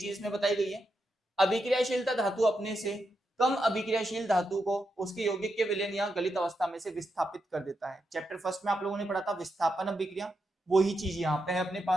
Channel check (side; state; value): both; normal; correlation 0.85